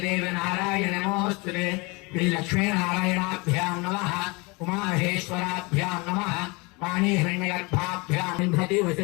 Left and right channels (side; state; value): right; quieter; 27.2 dB